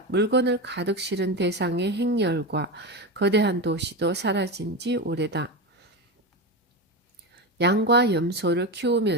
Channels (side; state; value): both; normal; correlation 0.18